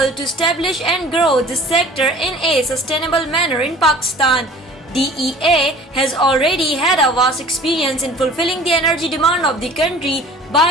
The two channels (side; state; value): both; normal; correlation 0.47